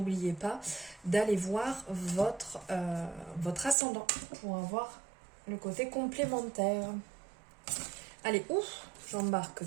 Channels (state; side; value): drops out; left; at 3.8 s